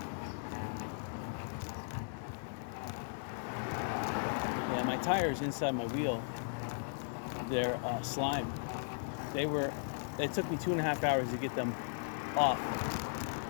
Yeah, my tires inside my wheel, they're slime. It took me 2.5 hours to get them off.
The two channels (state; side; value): silent; right; digital silence